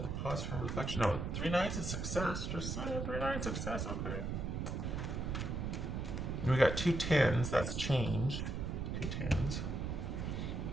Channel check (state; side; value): noise; right; rumble, 2 dB below the sound